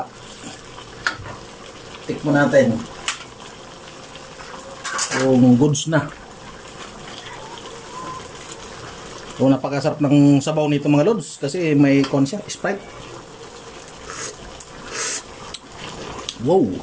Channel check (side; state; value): both; identical; correlation 1.00